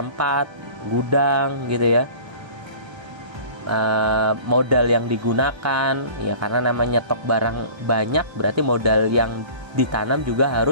gudang gitu ya, modal yang digunakan ya, karena namanya stok barang banyak berarti modal yang ditanam juga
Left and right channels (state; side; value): late; left; 1.3 ms